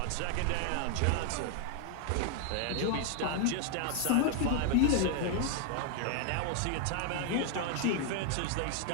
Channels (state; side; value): different; both; correlation 0.01